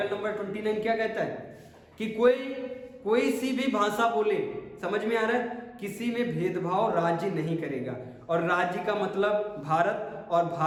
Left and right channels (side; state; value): both; identical; correlation 1.00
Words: नंबर 29 क्या कहता है कि कोई सी भी भाषा बोले, समझ में आ रहा है, किसी में भेदभाव राज्य नहीं करेगा। और राज्य का मतलब भारत, और